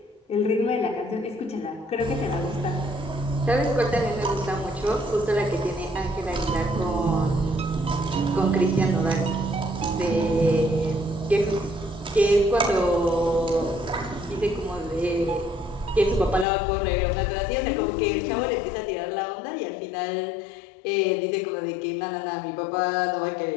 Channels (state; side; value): drops out; right; at 16.4 s